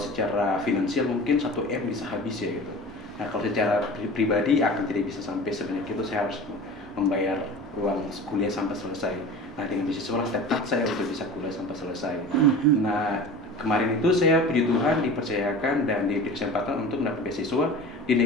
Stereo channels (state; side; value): normal; both; correlation 0.36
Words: finansial mungkin 1 M bisa habis ya gitu. Nah kalau secara pribadi akan tidak bisa sampai sebanyak itu, saya harus membayar uang kuliah sampai selesai. Nah dengan beasiswa lah tepat saya untuk bisa kuliah sampai selesai. Nah kemarin itu saya puji Tuhan dipercayakan dan diberi kesempatan untuk mendapat beasiswa di